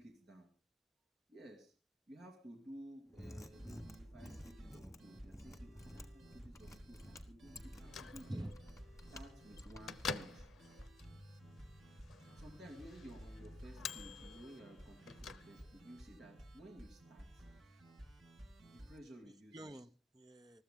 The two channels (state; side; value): normal; both; correlation 0.80